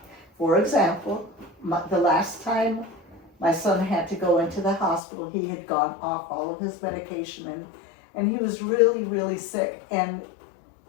For example, the last time my son had to go into the hospital, he had gone off all of his medication and he was really, really sick. And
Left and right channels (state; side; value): drops out; right; at 5.0 s